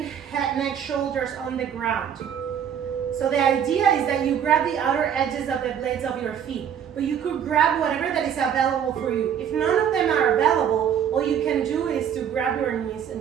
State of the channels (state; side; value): quieter; left; 8.6 dB